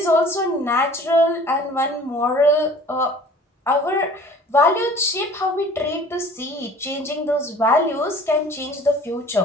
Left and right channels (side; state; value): both; normal; correlation 0.48